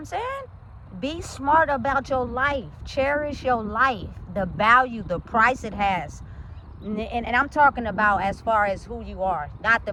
saying? Be smart about your life. Cherish your life, the value, the price it has. And I'm talking about as far as who you are, not the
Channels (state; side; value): identical; both; correlation 1.00